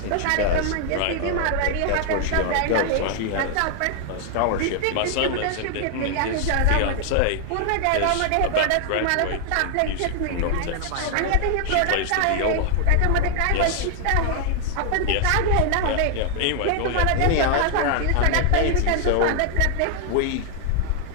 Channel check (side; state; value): both; different; correlation 0.00